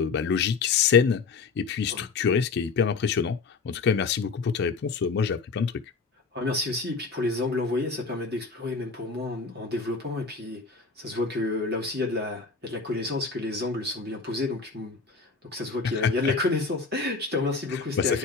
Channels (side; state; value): right; quieter; 4.6 dB